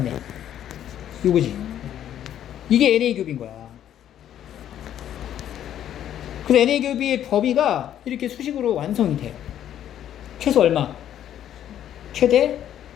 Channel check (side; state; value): right; quieter; 10.8 dB